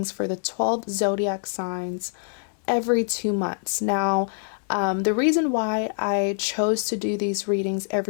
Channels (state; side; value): silent; right; digital silence